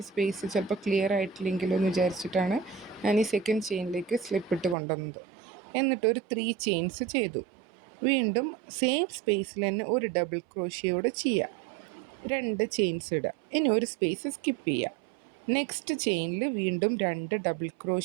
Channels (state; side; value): drops out; left; at 4.8 s